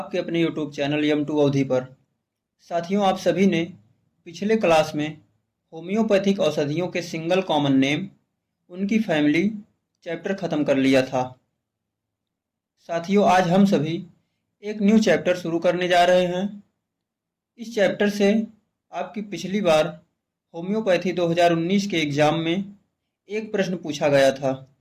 अपने यूट्यूब चैनल यम2 अवधि पर। साथियों, आप सभी ने पिछले क्लास में होम्योपैथिक औषधियों के सिंगल कॉमन नेम, उनकी फैमिली चैप्टर ख़त्म कर लिया था। साथियों, आज हम सभी एक न्यू चैप्टर शुरू करने जा रहे हैं। इस चैप्टर से आपकी पिछली बार होम्योपैथी 2019 के एग्ज़ाम में एक प्रश्न पूछा गया था,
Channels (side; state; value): both; identical; correlation 1.00